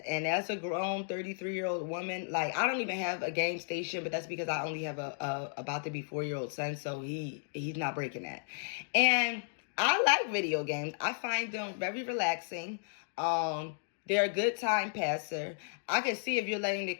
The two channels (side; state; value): right; silent; digital silence